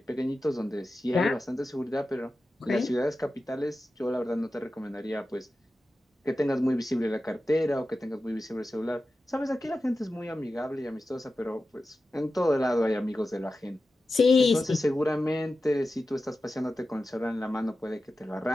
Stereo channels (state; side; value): normal; both; correlation 0.93